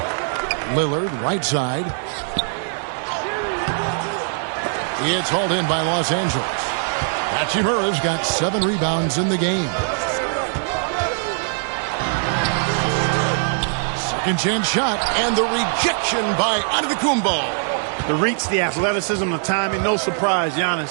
Lillard, right side. It's hauled in by Los Angeles. Hachimura's got 7 rebounds in the game. Second chance shot, and the rejection by Antetokounmpo. The reach, the athleticism, the timing, no surprise.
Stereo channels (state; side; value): silent; left; 62 dB below the other